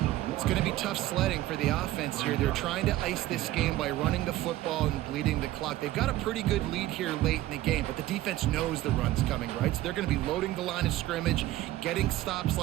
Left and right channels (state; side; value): quieter; left; 15.5 dB